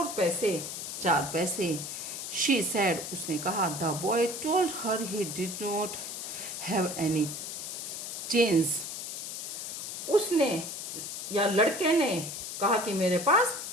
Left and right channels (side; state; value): left; noise; hiss, 6 dB below the sound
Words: पैसे, 4 पैसे। शी सैड, उसने कहा। The boy told her he did not have any change, उसने या लड़के ने कहा कि मेरे पास